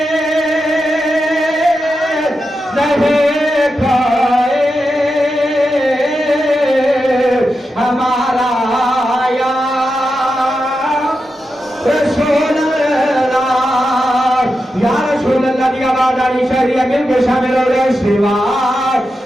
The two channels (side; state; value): both; normal; correlation 0.89